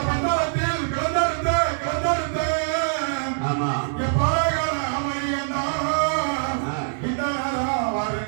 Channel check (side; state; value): left; silent; digital silence